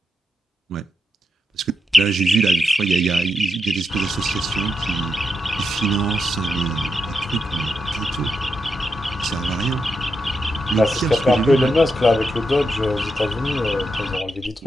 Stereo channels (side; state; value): both; normal; correlation 0.86